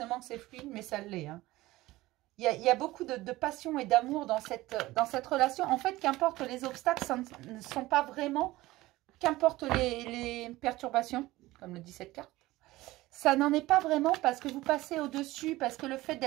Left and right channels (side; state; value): left; quieter; 18.2 dB